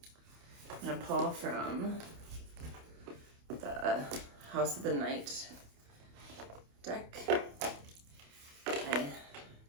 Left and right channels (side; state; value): left; late; 28 ms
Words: going to pull from the House of the Night deck. I